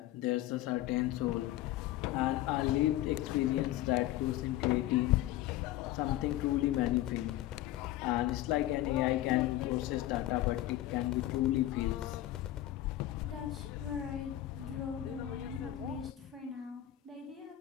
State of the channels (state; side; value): quieter; right; 14.6 dB